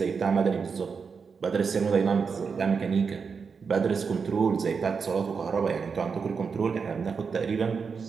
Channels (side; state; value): left; quieter; 5.6 dB